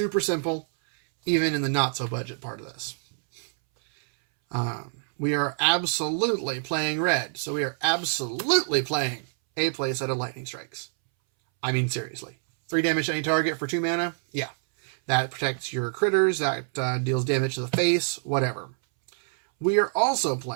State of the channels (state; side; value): silent; left; 61 dB below the other